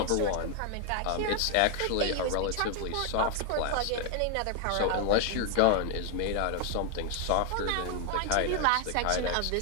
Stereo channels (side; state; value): both; different; correlation 0.00